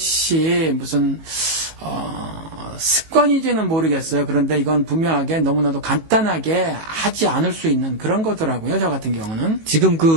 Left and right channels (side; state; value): left; late; 18 ms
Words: 무슨 습관인지는 모르겠어요. 그런데 이건 분명하게 너무나도 간단하게 하지 않을 수 있는 그런 거더라고요. 저 같은 경우는. 지금